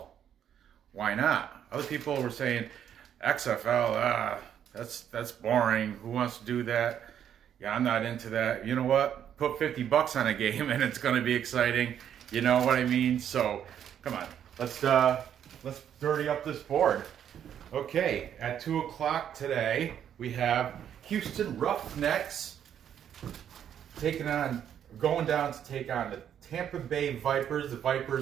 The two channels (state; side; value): quieter; left; 9.4 dB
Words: Why not? Other people were saying, XFL, that's boring. Who wants to do that? Yeah, I'm not into that. You know what? Put $50 on a game and it's going to be exciting. You know what I mean? So, come on. Let's dirty up this board. Okay, at 2 o'clock today, we have Houston Roughnecks going down to take on the Tampa Bay Vipers, the